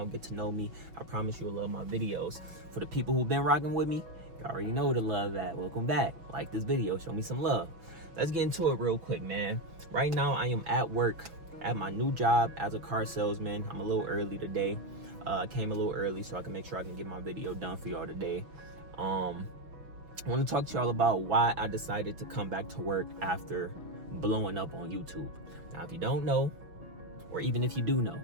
get to know me. I promise you'll love my videos. For the people who've been rocking with me, you already know the love that. Welcome back. Like this video, show me some love. Let's get into it real quick, man. Right now I am at work at my new job as a car salesman. I'm a little early today. I came a little early so I can make sure I can get my video done for y'all today. I want to talk to y'all about why I decided to come back to work after blowing up on YouTube. Now, if you don't know, or even if you do know,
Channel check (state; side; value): late; left; 6.0 ms